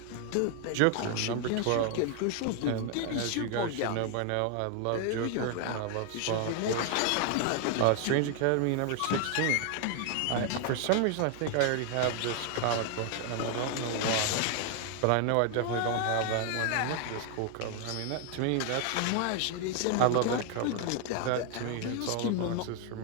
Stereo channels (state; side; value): different; both; correlation 0.00